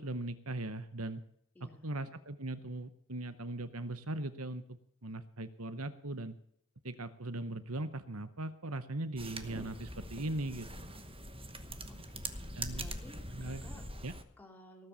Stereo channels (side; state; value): both; normal; correlation 0.55